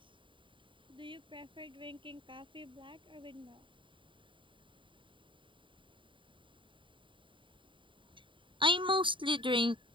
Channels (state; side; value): late; left; 0.24 ms